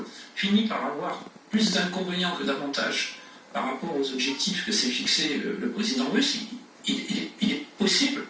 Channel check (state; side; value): identical; both; correlation 1.00